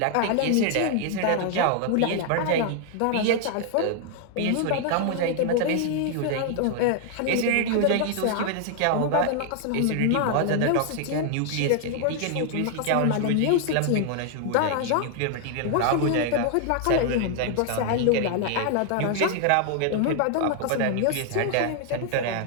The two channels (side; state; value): both; different; correlation 0.00